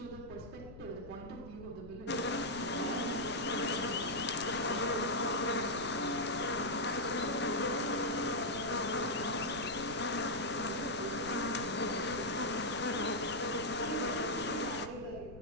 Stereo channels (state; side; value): noise; left; rumble, 15 dB below the sound